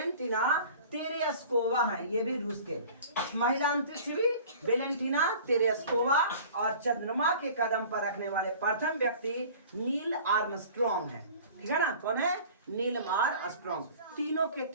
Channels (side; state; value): both; inverted; correlation -0.45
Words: तेरेस्कोवा है, ये भी रूस के महिला अंतरिक्ष भी वेलेंटिना तेरेस्कोवा। और चंद्रमा के कदम पर रखने वाले प्रथम व्यक्ति नील आर्मस्ट्रॉन्ग है। ठीक है ना, कौन है? Neil Armstrong. तीनों के